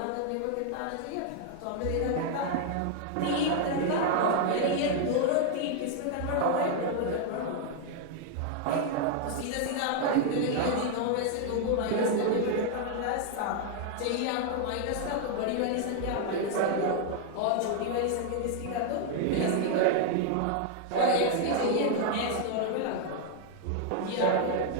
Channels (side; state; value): both; different; correlation 0.00